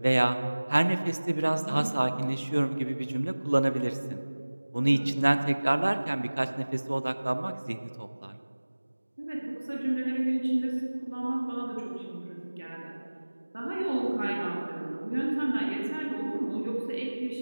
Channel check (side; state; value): both; inverted; correlation -1.00